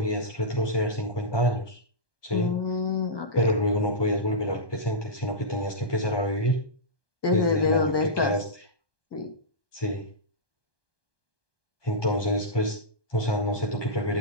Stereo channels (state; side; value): late; right; 1.2 ms